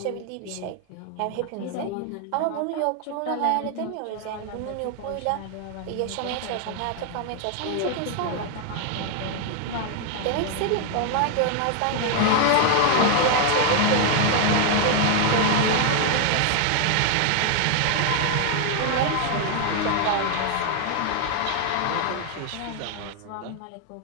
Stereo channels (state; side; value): different; both; correlation 0.01